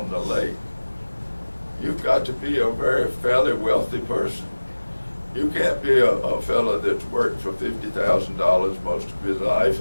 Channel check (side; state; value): both; inverted; correlation -1.00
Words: the lake, you've got to be a very fairly wealthy person. You can't be a fella that's worked for $50,000 most of his life